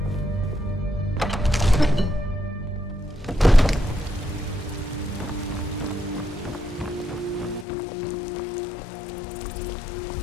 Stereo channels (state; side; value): drops out; right; at 7.7 s